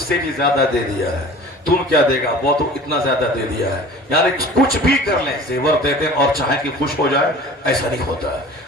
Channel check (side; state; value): both; normal; correlation 0.43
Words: سے بھی زیادہ دے دیا ہے، تم کیا دے گا، وہ تو اتنا زیادہ دے دیا ہے۔ یعنی کچھ بھی کر لیں، زیور دے دیں اور چاہیں کہ خوش ہو جائے، ایسا نہیں ہوتا ہے۔